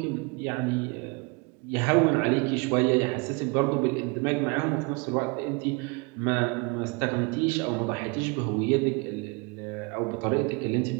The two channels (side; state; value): left; quieter; 29.5 dB